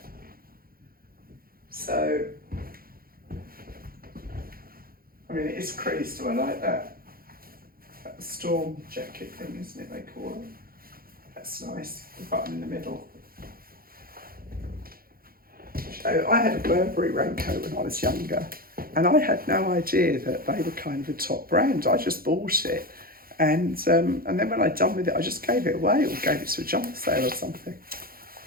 So, I mean, it is creased. Do I like that? That storm jacket thing, isn't it, they call it? That's nice, the button in the middle. So I had a Burberry raincoat when I was younger, and I had no idea that they were kind of a top brand. I just bought it, and then when I'd done with it, I just gave it away or gave it to a jumper sale or something.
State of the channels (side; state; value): left; late; 0.43 ms